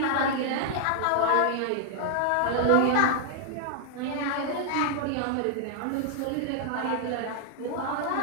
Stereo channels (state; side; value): different; both; correlation 0.00